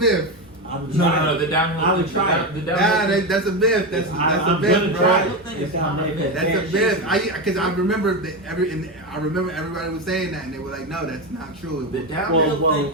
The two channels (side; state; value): both; normal; correlation 0.14